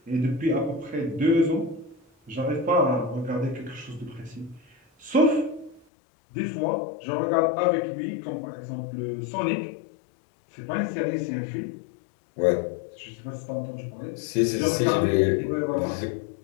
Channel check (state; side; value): drops out; right; at 5.9 s